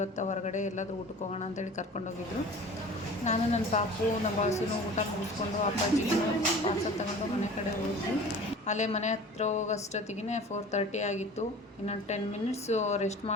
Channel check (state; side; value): normal; both; correlation 0.42